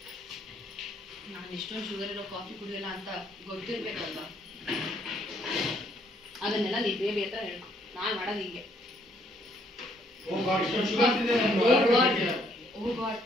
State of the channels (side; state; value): both; normal; correlation 0.68